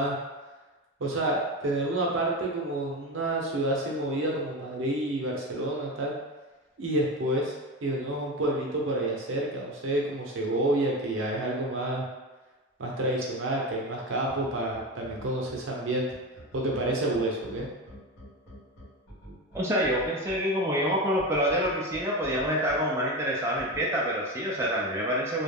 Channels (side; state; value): both; normal; correlation 0.21